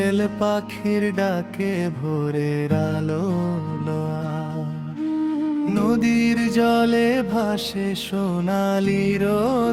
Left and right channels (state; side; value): identical; both; correlation 1.00